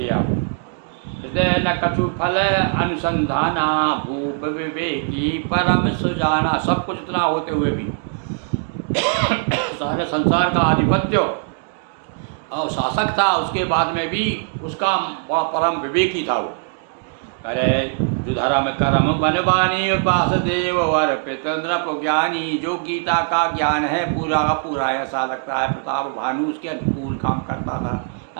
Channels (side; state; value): left; silent; 65 dB below the other